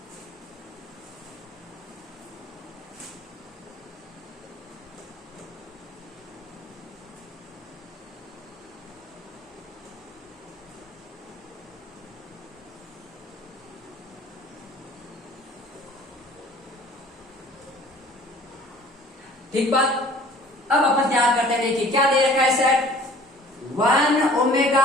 ठीक बात। अब अपन तैयार करते हैं, देखिए क्या दे रखा है सेट 1 ओमेगा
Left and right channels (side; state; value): both; normal; correlation 0.50